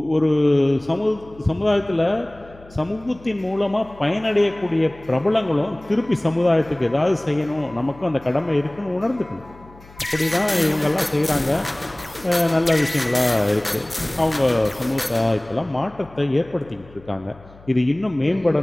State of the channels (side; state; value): left; noise; hum, 23 dB below the sound